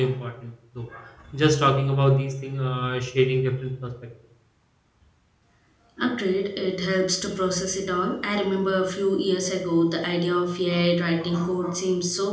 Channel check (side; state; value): both; identical; correlation 1.00